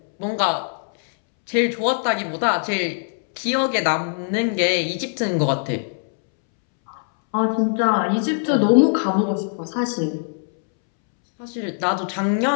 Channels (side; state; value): right; silent; 65 dB below the other